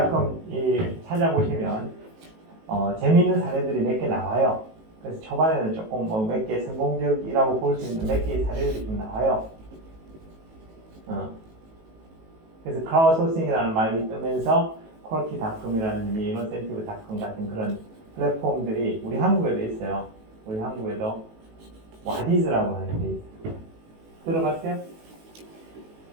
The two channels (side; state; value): left; late; 18 ms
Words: 찾아보시면 재미있는 사례들이 몇 개 나와요. 그래서 초반에는 조금 몇 개 성공적이라고 볼 수 있는 몇 개의 사례들이 좀 나와요. 그래서 크라우드 소싱이라는 말이 뜨면서 퀄키닷컴이라든지 이노센티브닷컴 같은 그런 플랫폼들이 우리 한국에도 있어요. 우리 한국에도 와디즈라고 하는 게 있어요. 들어봤어요?